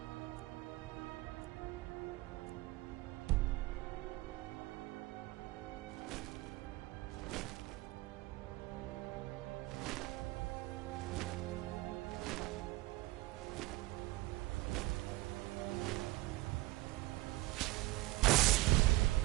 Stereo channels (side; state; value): left; quieter; 19.8 dB